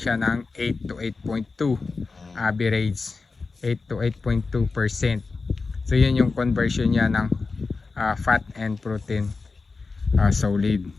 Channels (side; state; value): right; quieter; 4.2 dB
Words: ng 8 to 8.2 average, 8 to 8.2%. So yun yung conversion niya ng fat and protein solid.